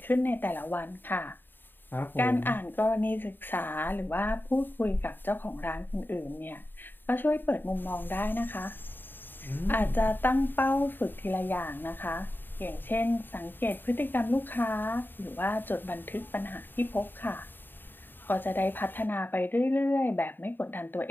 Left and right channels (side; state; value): right; late; 0.094 ms